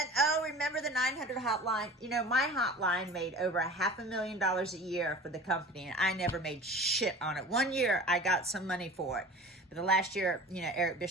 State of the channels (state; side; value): normal; both; correlation 0.39